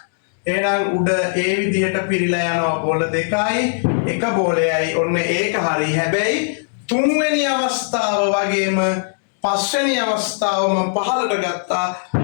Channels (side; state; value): right; silent; digital silence